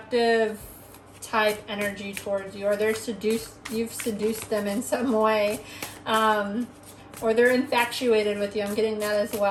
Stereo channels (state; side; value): identical; both; correlation 1.00